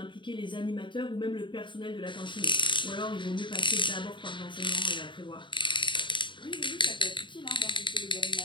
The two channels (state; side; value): late; right; 0.23 ms